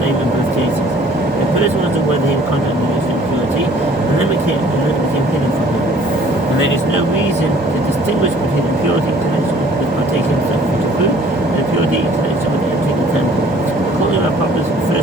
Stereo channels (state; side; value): normal; both; correlation 0.55